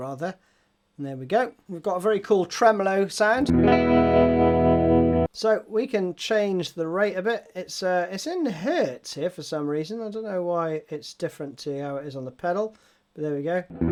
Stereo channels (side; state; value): both; identical; correlation 1.00